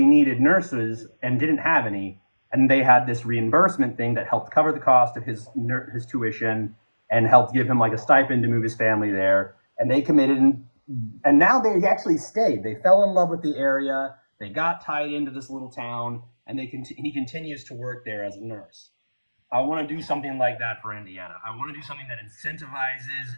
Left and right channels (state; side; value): inverted; both; correlation -1.00